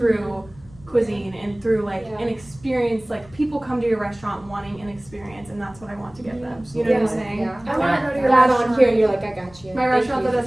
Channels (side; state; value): left; noise; rumble, 23 dB below the sound